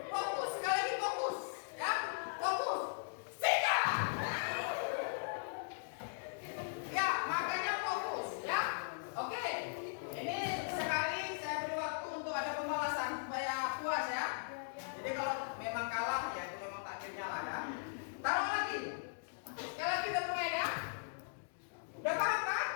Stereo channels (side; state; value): right; silent; digital silence